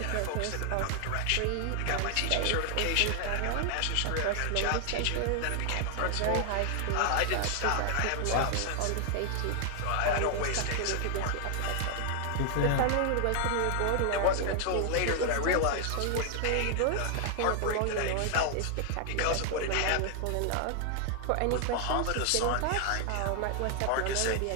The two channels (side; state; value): both; different; correlation 0.00